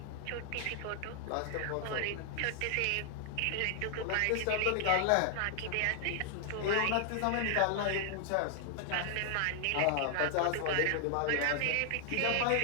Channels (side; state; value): both; different; correlation 0.00